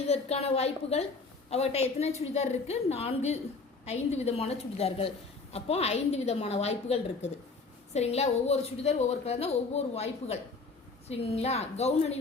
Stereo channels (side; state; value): right; quieter; 4.1 dB